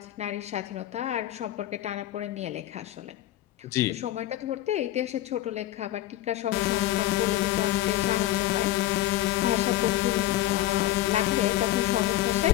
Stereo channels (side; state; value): right; quieter; 14.4 dB